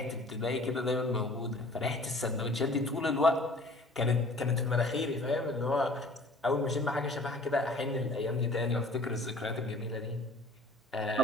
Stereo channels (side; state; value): both; normal; correlation 0.50